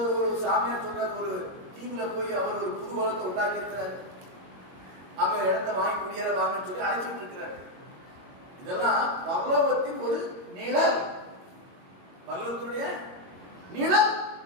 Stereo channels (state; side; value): late; left; 22 ms